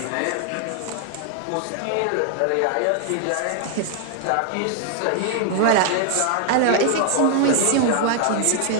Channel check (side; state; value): both; different; correlation 0.00